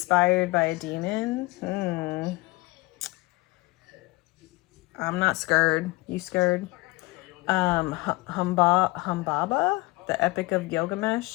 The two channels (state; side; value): quieter; right; 23.0 dB